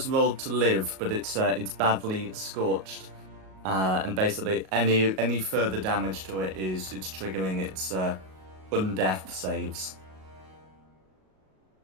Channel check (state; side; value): late; left; 38 ms